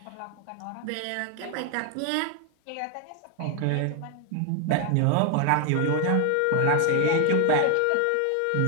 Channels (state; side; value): different; both; correlation 0.01